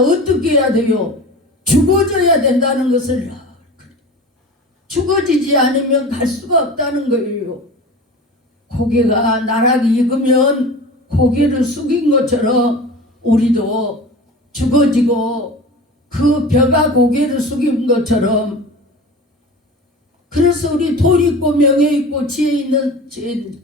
어떻게 해야 돼요? 죽어져야 된다는 것을 죽어지지 않으면 갈 수가 없다는 거예요. 고개가 나락이 익으면 고개를 숙인 것처럼 우리도 죽어지고 그 벼가 고개를 숙인 것처럼 그래서 우리 돈 있고 명예 있고 지혜 있는 지혜는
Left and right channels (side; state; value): both; normal; correlation 0.35